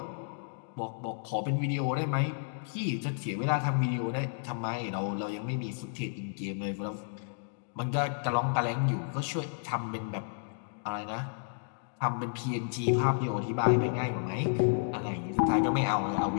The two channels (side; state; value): right; silent; digital silence